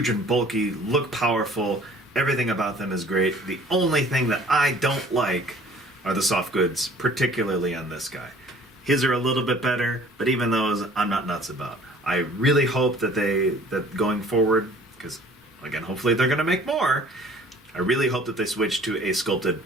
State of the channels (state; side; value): normal; both; correlation 0.52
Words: and bulky, look powerful. Everything about them is great. The only thing that I don't like are the soft goods, particularly on this guy. His are a little bit better, but even those I'm not nuts about. I really hope that going forward, because again, hopefully they're going to make more. I really hope that they switch to a sculpted